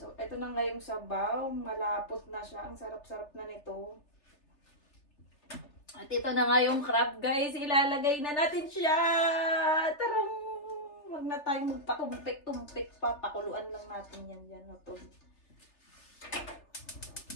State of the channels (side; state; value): right; late; 3.3 ms